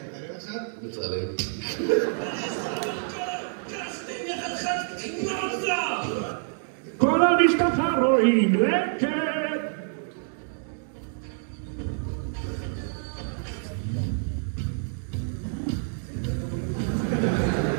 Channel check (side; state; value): left; silent; digital silence